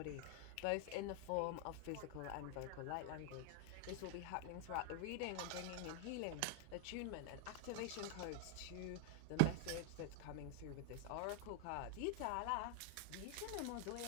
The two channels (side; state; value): both; different; correlation 0.00